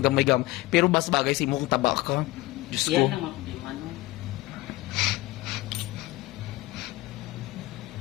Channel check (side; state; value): right; quieter; 19.3 dB